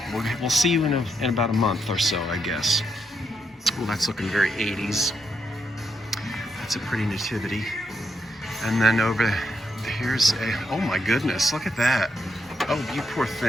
We'll see you in about a month or so, I guess. Well, that's looking very 80s. That's a pretty nativity. And then over here's a, oh my goodness, look at that. Oh, you poor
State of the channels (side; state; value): both; normal; correlation 0.80